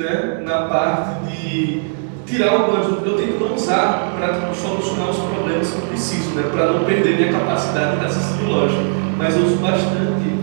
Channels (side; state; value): left; silent; digital silence